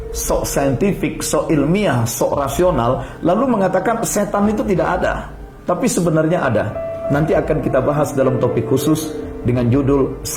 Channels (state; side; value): identical; both; correlation 1.00